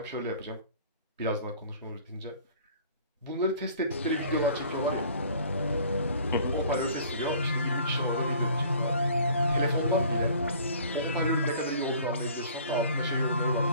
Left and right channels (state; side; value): inverted; both; correlation -0.51